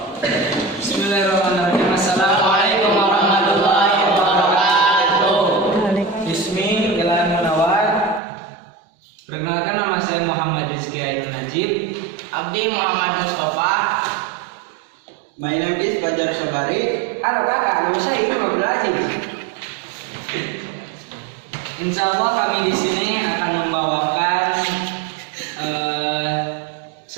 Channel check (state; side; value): drops out; left; at 8.2 s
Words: Bismillahirrahmanirrahim. Assalamualaikum warahmatullahi wabarakatuh. Bismi Jalan Munawar. Perkenalkan, nama saya Muhammad Rizky Ainun Najib. Abdi Muhammad Mustafa. My name is Fajar Sabari. Halo kakak, nama saya Imam Abdul. Insya Allah kami di sini akan membawakan